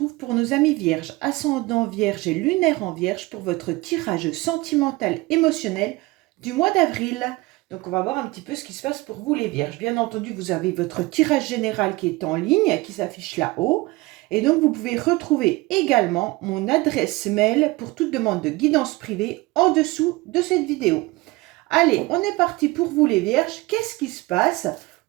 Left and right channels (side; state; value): left; quieter; 21.7 dB